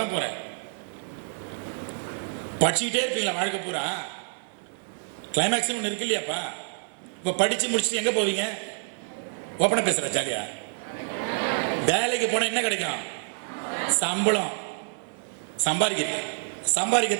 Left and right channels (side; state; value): left; silent; digital silence